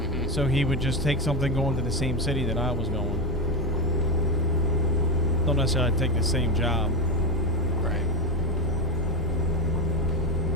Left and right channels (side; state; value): both; normal; correlation 0.13